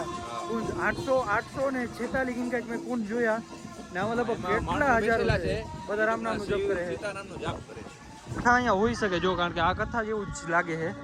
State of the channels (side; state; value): both; identical; correlation 1.00